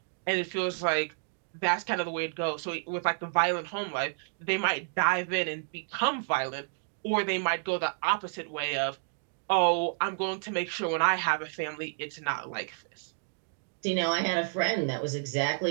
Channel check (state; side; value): silent; left; digital silence